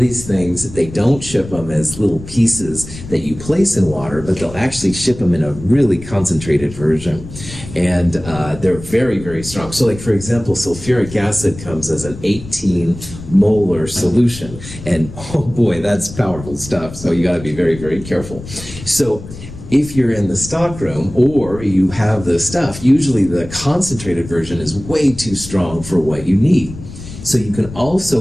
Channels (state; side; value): noise; left; rumble, 14 dB below the sound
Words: things, they don't ship them as little pieces that you place in water, but they'll actually ship them in a really concentrated version. And they're very, very strong. So like, for example, sulfuric acid comes as an 18 molar solution. And oh boy, that's powerful stuff. So you got to be very, very careful. So if you're in the stockroom or you have the stuff, usually the concentrated version is way too strong for what you need. So you can